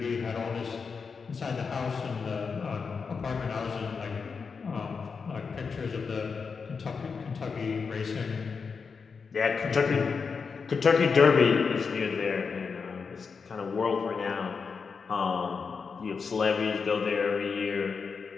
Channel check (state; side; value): quieter; right; 5.4 dB